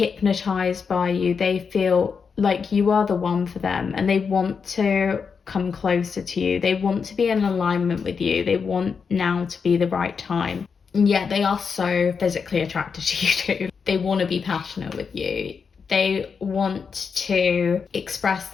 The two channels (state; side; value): quieter; right; 5.8 dB